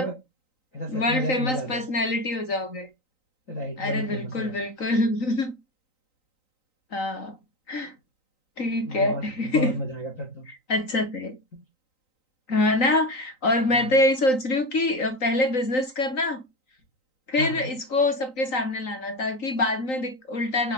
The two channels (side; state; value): right; late; 3.9 ms